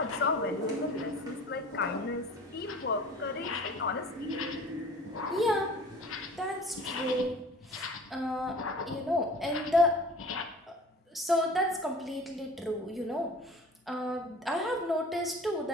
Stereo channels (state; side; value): normal; both; correlation 0.43